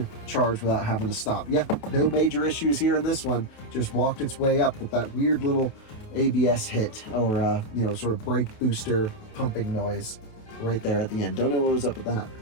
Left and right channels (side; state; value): right; late; 28 ms